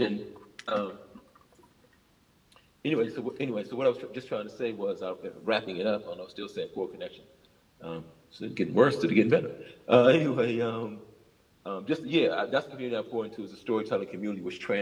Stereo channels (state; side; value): identical; both; correlation 1.00